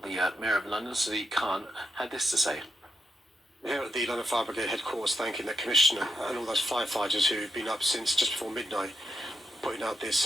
the Mayor of London, Sadiq Khan, had this to say. Here at the London Fire Brigade headquarters, thanking the Commissioner and all those firefighters who've been up since just before midnight, putting out this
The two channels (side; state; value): both; normal; correlation 0.84